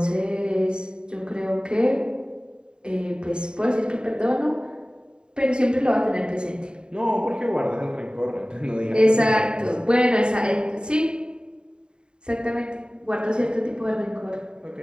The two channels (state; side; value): late; left; 0.049 ms